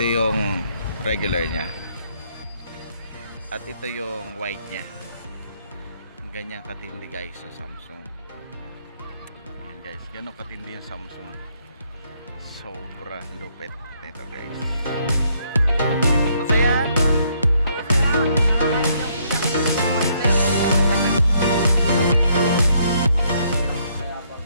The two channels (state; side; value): inverted; both; correlation -0.70